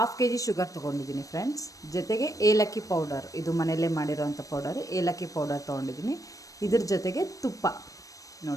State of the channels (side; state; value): right; late; 0.16 ms